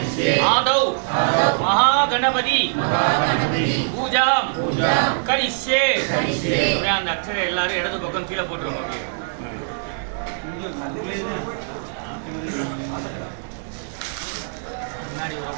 आदौ महागणपति पूजां करिष्ये அந்த அக்ஷரை எல்லாரும் இடது பக்கம் கீழே போட்டுருங்க முன்னாடி ஒரு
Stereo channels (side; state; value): left; silent; digital silence